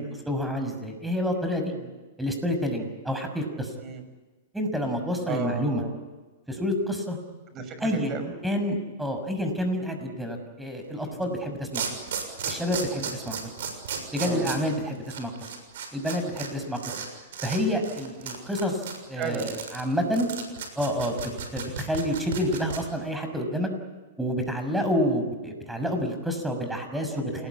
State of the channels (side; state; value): both; normal; correlation 0.27